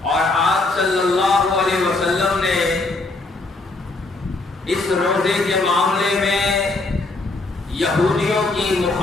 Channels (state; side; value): quieter; right; 3.2 dB